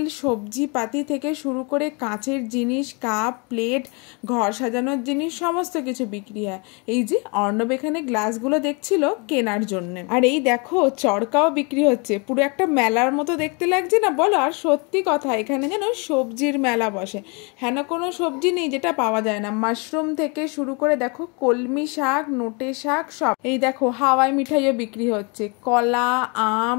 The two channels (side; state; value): right; quieter; 32.0 dB